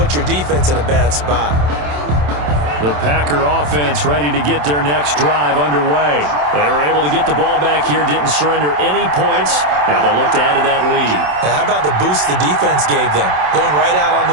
your defense in a bad spot. The Packer offense ready to get their next drive underway. They were able to get the ball back here, didn't surrender any points. Now they'll look to add to that lead. Now, how about the boost the defense gave them? Going right out on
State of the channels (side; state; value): left; late; 27 ms